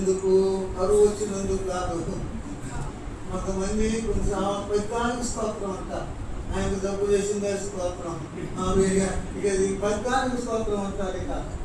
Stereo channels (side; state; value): both; identical; correlation 1.00